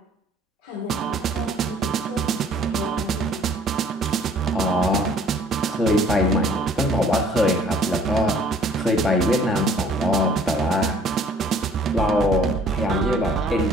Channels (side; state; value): both; normal; correlation 0.56